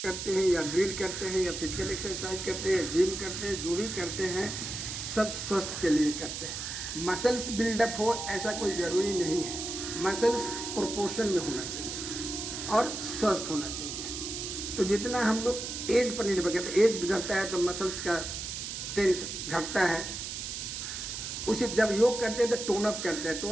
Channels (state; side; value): noise; right; hiss, 6 dB below the sound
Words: हैं या ड्रिल करते हैं या फिजिकल एक्सरसाइज करते हैं, जिम करते हैं, जो भी करते हैं सब स्वस्थ के लिए करते हैं। मसल्स बिल्डअप हो ऐसा कोई ज़रूरी नहीं है, मसल्स प्रोपोर्शन में होना चाहिए और स्वस्थ होना चाहिए। तो जितना हम लोग एज पर निर्भर करते हैं, एज गुजरता है तो मसल्स का टेंस घटता है। उसी जब योग करते हैं तो टोन अप